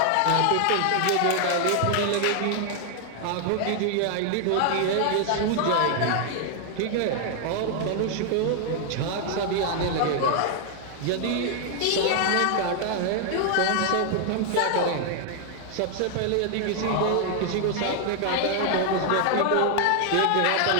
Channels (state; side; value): different; both; correlation 0.00